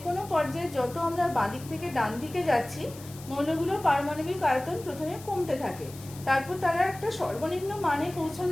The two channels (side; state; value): left; noise; hiss, 18 dB below the sound